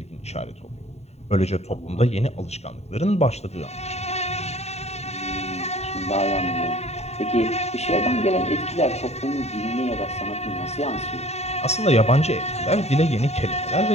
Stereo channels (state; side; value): late; right; 0.31 ms